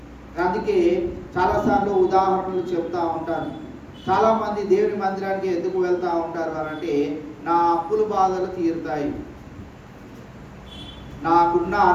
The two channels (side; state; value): both; identical; correlation 1.00